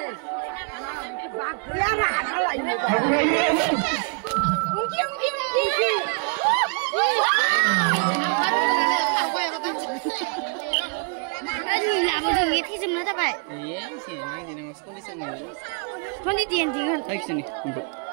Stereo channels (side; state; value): left; quieter; 37.5 dB